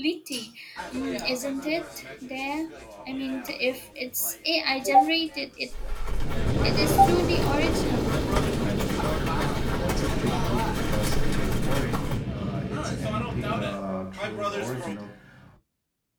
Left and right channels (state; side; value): identical; both; correlation 1.00